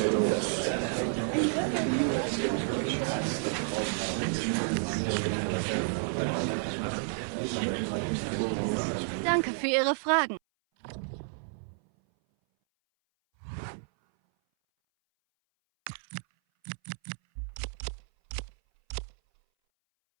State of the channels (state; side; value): silent; left; 57 dB below the other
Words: Danke für Ihre Fragen.